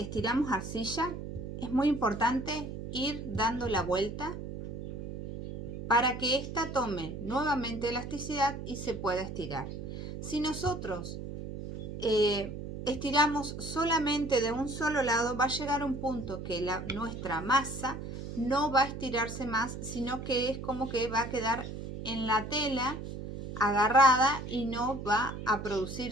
arcilla, es muy importante ir dando la vuelta para que ésta tome nuevamente elasticidad y se pueda estirar. Si nosotros estiramos solamente de un solo lado, va a llegar un punto que nuestra masa no va a estirarse más, sino que es como que va a quedar en la tela agarrada y no va a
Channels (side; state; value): right; noise; hum, 8 dB below the sound